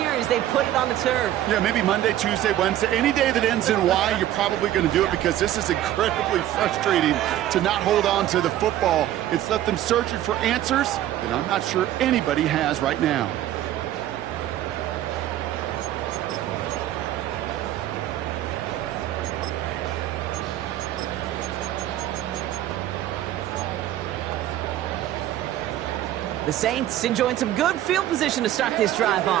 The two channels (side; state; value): left; quieter; 12.9 dB